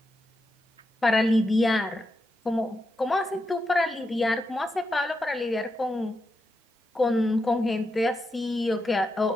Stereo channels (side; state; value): both; normal; correlation 0.86